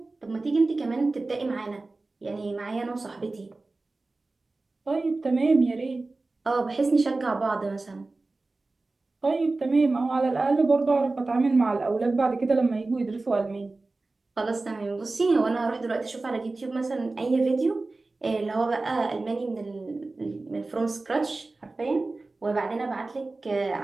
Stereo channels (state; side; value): quieter; left; 3.4 dB